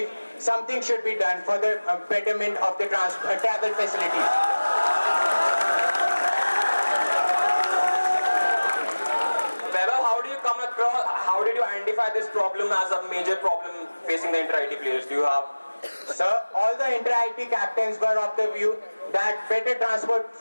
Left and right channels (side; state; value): both; inverted; correlation -1.00